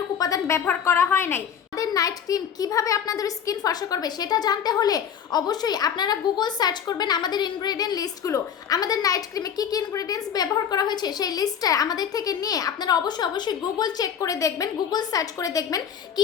উপাদান ব্যবহার করা হয় নাই। আমাদের নাইট ক্রিম কিভাবে আপনাদের স্কিন ফর্সা করবে সেটা জানতে হলে অবশ্যই আপনারা গুগল সার্চ করবেন আমাদের ইনগ্রেডিয়েন্ট লিস্টগুলো। আমাদের নাইট ক্রিমে কি কি ইনগ্রেডিয়েন্টস ব্যবহার করা হয়েছে সেই লিস্টটা আমাদের থেকে নিয়ে আপনারা অবশ্যই গুগল চেক করে দেখবেন, গুগল সার্চ করে দেখবেন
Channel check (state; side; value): quieter; right; 8.1 dB